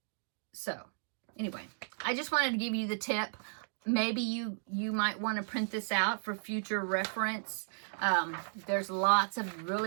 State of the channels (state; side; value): silent; left; digital silence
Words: So anyway, I just wanted to give you the tip. maybe you might want to print this out for future reference. There's lots of